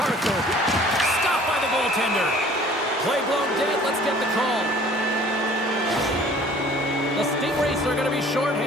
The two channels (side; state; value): both; normal; correlation 0.51